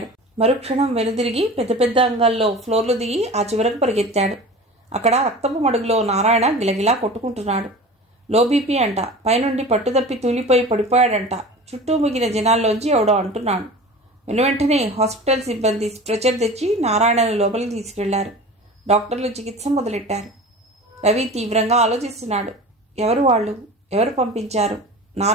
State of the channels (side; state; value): both; normal; correlation 0.36